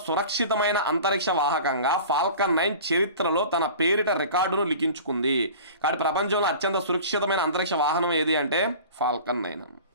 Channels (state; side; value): inverted; both; correlation -0.40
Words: సురక్షితమైన అంతరిక్ష వాహకంగా ఫాల్కన్ 9 చరిత్రలో తన పేరిట రికార్డును లిఖించుకుంది. కాబట్టి ప్రపంచంలో అత్యంత సురక్షితమైన అంతరిక్ష వాహనం ఏది అంటే ఫాల్కన్ 9.